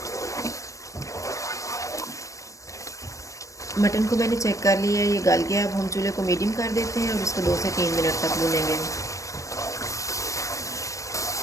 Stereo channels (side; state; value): right; late; 0.16 ms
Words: मटन को मैंने चेक कर लिया है, ये गल गया। अब हम चूल्हे को मीडियम कर देते हैं और इसको 2 से 3 मिनट तक भूनेंगे।